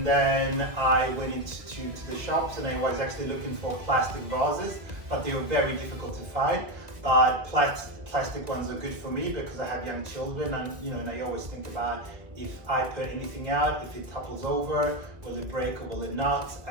then I went into the shops and I was actually looking for plastic vases, but they were very difficult to find. But plastic ones are good for me because I have young children, and you know, and I always think about, if I put anything out, if it topples over, will it break or will it not?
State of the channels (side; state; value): left; late; 1.9 ms